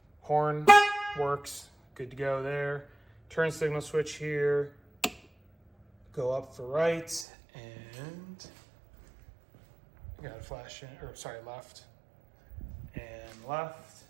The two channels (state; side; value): drops out; left; at 7.2 s